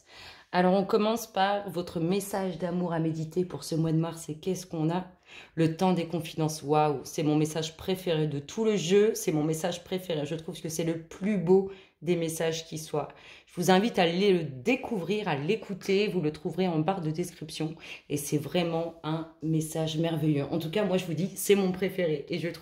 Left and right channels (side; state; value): both; identical; correlation 1.00